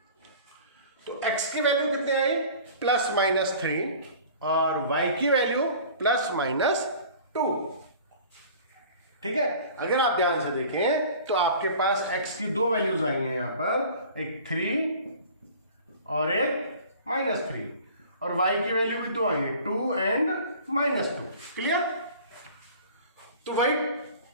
तो x की वैल्यू कितनी आई, प्लस माइनस 3 और y की वैल्यू प्लस माइनस 2। ठीक है, अगर आप ध्यान से देखें तो आपके पास x की दो वैल्यूज आई हैं यहां पर, एक 3 और एक -3, और y की वैल्यू भी दो आई है, 2 एंड -2। क्लियर? तो वही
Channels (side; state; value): both; inverted; correlation -0.45